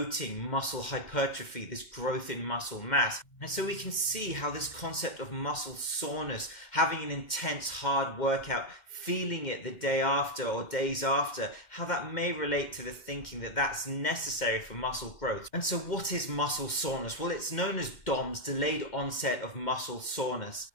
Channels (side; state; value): right; late; 2.1 ms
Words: muscle hypertrophy, this growth in muscle mass. And so we can see how this concept of muscle soreness, having an intense hard workout, feeling it the day after or days after, how that may relate to the thinking that that's necessary for muscle growth. And so what is muscle soreness? Well, it's known as DOMS, delayed onset of muscle soreness.